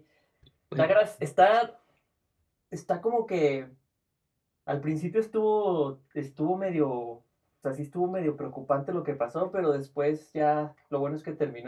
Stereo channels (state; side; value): identical; both; correlation 1.00